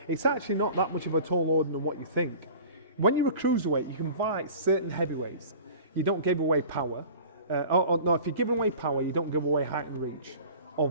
It's actually not that much of a tall order than what you think. When you're a cruiserweight, you can fight certain heavyweights. You don't give away power. No, if you're giving away power, you don't give away height and reach, or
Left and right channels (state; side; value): inverted; both; correlation -0.41